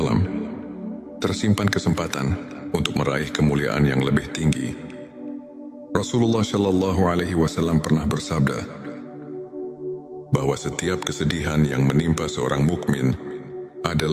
tersimpan kesempatan untuk meraih kemuliaan yang lebih tinggi. Rasulullah Shallallahu Alaihi Wasallam pernah bersabda bahwa setiap kesedihan yang menimpa seorang mukmin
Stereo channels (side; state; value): both; identical; correlation 1.00